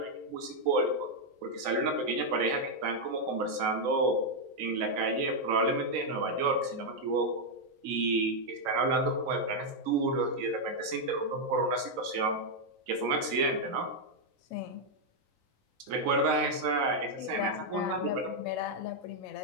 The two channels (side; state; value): left; late; 3.9 ms